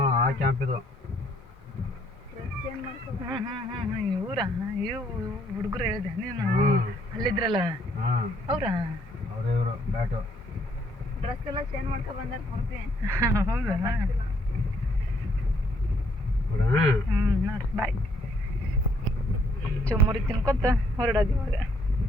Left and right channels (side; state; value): both; normal; correlation 0.68